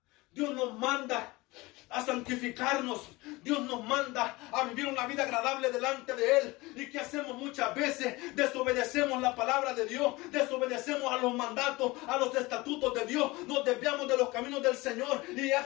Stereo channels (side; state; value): right; quieter; 21.9 dB